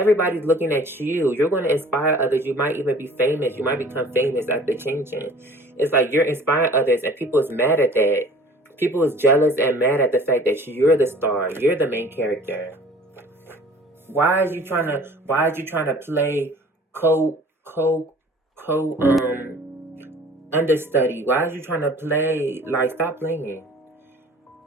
looking at you. You're going to inspire others. You might even be famous. You might become famous after changing. It's like you're inspiring others, and people is mad at that. People is jealous and mad at the fact that you're the star. You're the main character. Why are you trying to play understudy? Why are you trying to play, like, stop playing?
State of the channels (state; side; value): normal; both; correlation 0.48